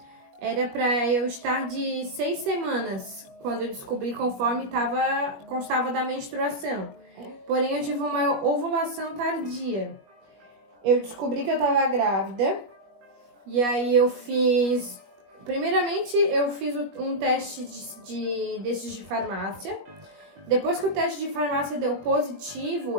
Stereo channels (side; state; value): left; late; 21 ms